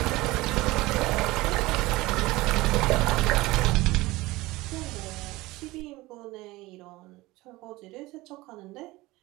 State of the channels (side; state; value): left; quieter; 20.0 dB